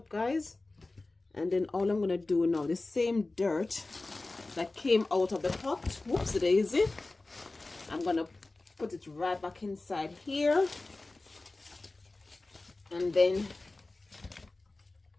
guys. And then all I'm gonna do now, the same dirt that came out of the pot, whoops daisy, I'm gonna put it right back inside here, and then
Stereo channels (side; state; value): right; quieter; 3.2 dB